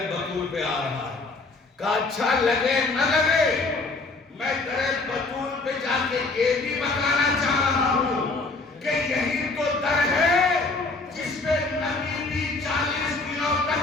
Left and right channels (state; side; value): quieter; right; 3.5 dB